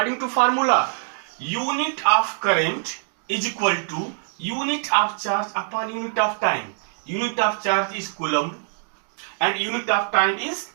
to formula, unit of current is equal to unit of charge upon unit of time. Unit of charge is coulomb and unit of time is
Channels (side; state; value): left; silent; digital silence